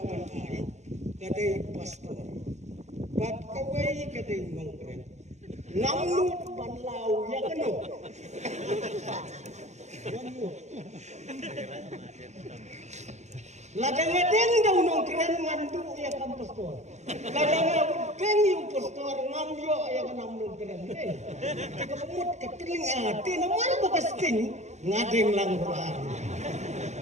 ayin Kadai pastor Bat kawai kadai ngongkren Ngamnut panlau ya keno Ladang-ladang daw nong keren ngandu ya kam pastor Ladang-ladang yung pastor ngamyo ya kanam nong keren Kapamut kapiling ati naman bakasting ngadeng lang roan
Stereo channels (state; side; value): late; left; 0.33 ms